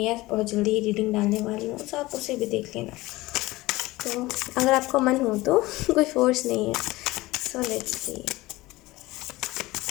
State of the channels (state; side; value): quieter; right; 19.5 dB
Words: बहुत जल्दी ही रीडिंग डालने वाली हूँ, तो आप उसे भी देख लेना। तो अगर आपको मन हो तो कोई फोर्स नहीं है। So let's see.